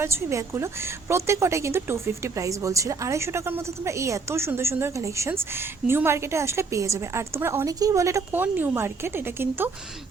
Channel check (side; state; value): left; quieter; 4.4 dB